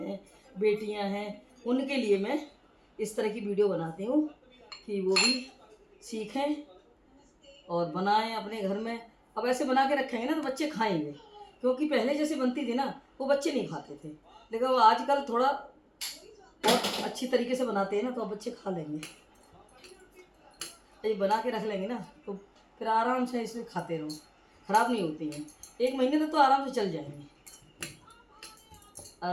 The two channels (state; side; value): identical; both; correlation 1.00